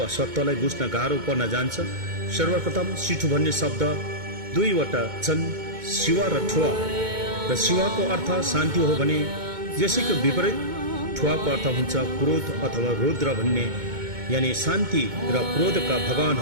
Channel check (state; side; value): late; left; 2.2 ms